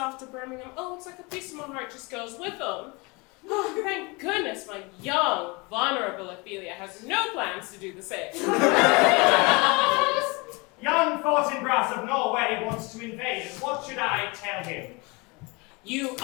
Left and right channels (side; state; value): right; quieter; 27.4 dB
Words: to Birmingham, oh, it's like a piece of my heart just goes with him. Oh, thank goodness my young, vulnerable Ophelia has no plans to do the same. Young Fortinbras of Norway wants to invade us. What should I tell him? You